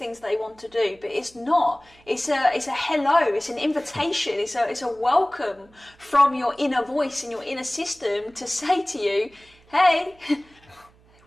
they want to do, but it's not. It's a hello, it's an invitation, it's a welcome from your inner voice and your inner system to say to you, hey,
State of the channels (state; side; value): noise; right; hum, 29 dB below the sound